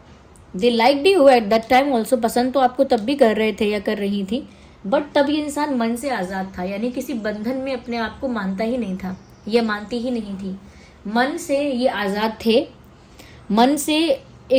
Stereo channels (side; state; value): both; identical; correlation 1.00